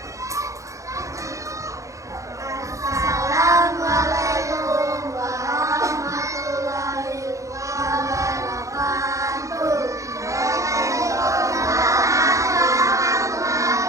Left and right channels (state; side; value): late; left; 0.15 ms